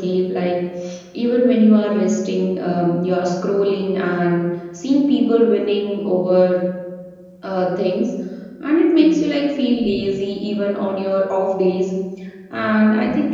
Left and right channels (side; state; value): both; identical; correlation 1.00